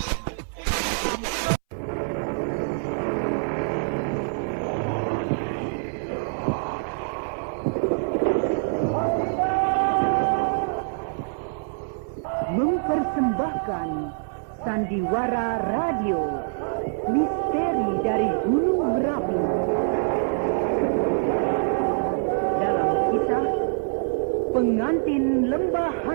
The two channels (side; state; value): left; silent; 60 dB below the other